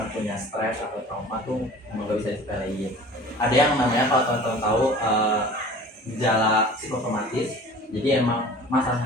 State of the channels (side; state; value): both; normal; correlation 0.43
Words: punya stres atau trauma tuh emang gak bisa disepelein. Ada yang namanya kalau teman-teman tahu gejala psikosomatis. Jadi emang